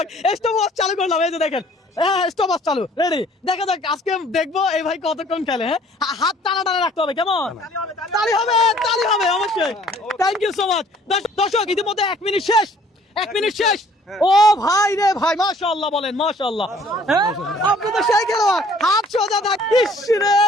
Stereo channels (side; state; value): both; normal; correlation 0.56